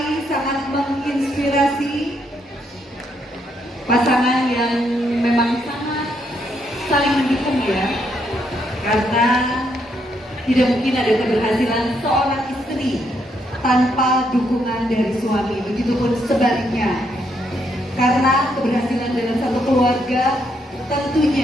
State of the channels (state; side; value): normal; both; correlation 0.75